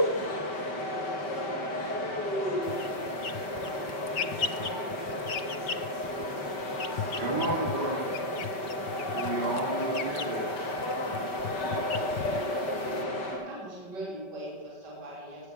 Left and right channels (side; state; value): right; late; 5.2 ms